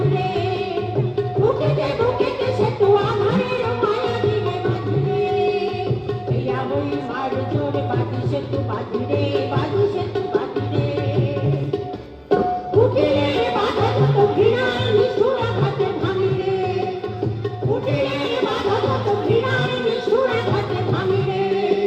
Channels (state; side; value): identical; both; correlation 1.00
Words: বুকে সে তু আধারের মায়া দিয়ে বাঁধিরে হেয়া হই বাড়িজোরে বাদিসে তু বাদিরে বাদিসে তু বাদিরে বুকে